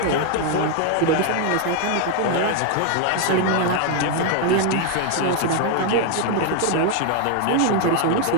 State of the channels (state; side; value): different; both; correlation 0.01